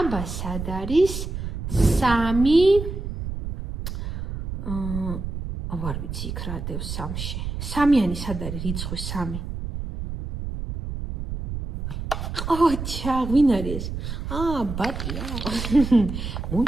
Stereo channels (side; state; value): right; noise; rumble, 5 dB below the sound